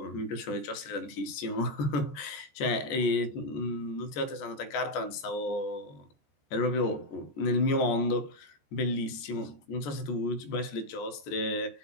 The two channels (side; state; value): right; late; 14 ms